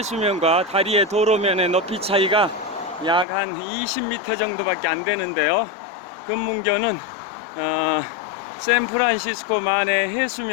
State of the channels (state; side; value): drops out; right; at 3.2 s